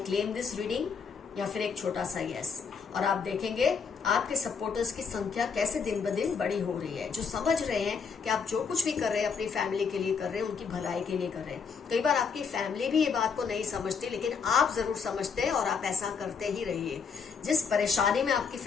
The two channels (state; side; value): quieter; right; 5.9 dB